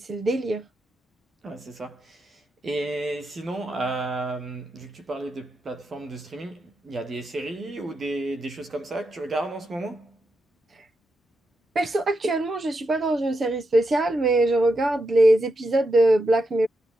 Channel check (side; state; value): both; normal; correlation 0.85